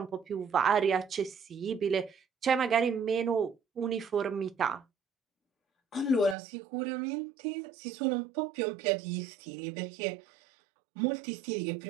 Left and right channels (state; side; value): drops out; left; at 6.4 s